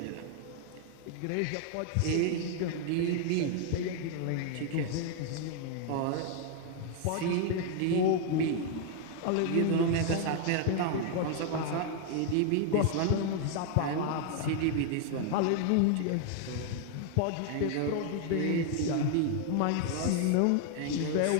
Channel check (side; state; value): both; different; correlation 0.00